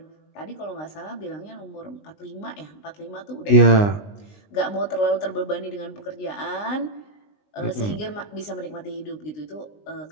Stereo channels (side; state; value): right; late; 20 ms